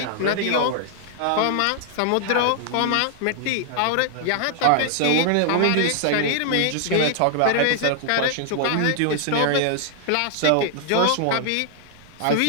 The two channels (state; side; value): different; both; correlation 0.00